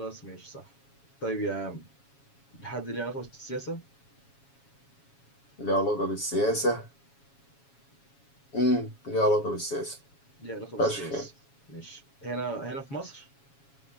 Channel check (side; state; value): right; late; 7.2 ms